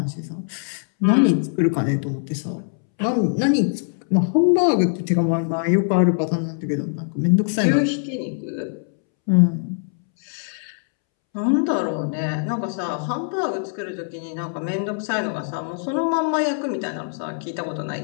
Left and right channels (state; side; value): silent; right; 64 dB below the other